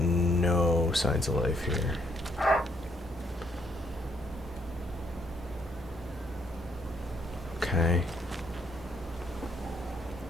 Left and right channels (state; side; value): normal; both; correlation 0.70